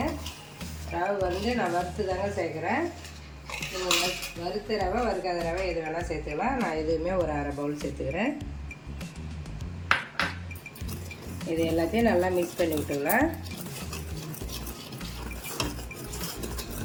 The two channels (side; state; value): both; identical; correlation 1.00